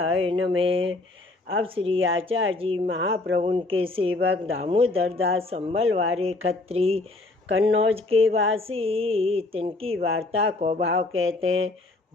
नमः। अब श्री आचार्य जी महाप्रभु के सेवक दामोदर दास संबलवारे खत्री कन्नौज के वासी, तिनकी वार्ता को भाव कहते हैं।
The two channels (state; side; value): quieter; right; 3.1 dB